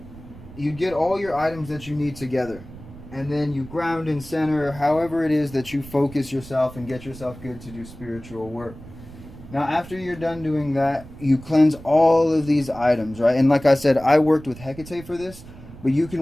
you get all your items that you need together, and then you ground and center however it is that you focus yourself and get yourself good to do spiritual work. Now after you're done doing that, you cleanse all of these items, right? And like I said, I worked with Hecate for this, but you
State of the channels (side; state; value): right; noise; rumble, 17 dB below the sound